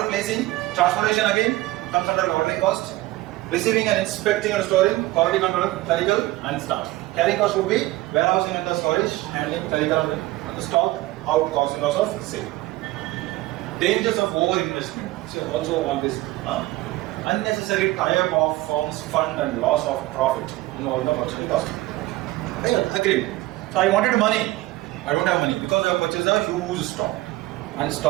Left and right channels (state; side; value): quieter; left; 18.3 dB